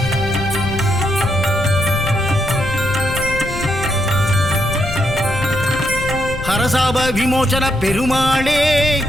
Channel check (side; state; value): left; noise; rumble, 8 dB below the sound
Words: ஹரசாப விமோசன பெருமாளே